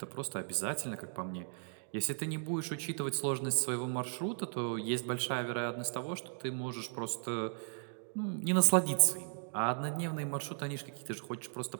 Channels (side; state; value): left; silent; 54 dB below the other